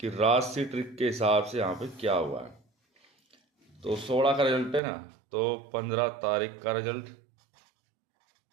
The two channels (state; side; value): drops out; left; at 4.8 s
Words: राशि ट्रिक के हिसाब से यहाँ पे क्या हुआ है। तो 16 का रिजल्ट है ना, तो 15 तारीख का रिजल्ट,